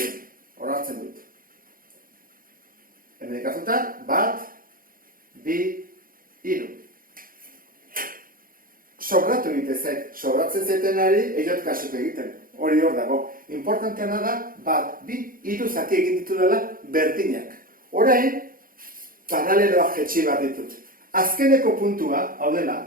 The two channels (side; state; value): left; late; 0.41 ms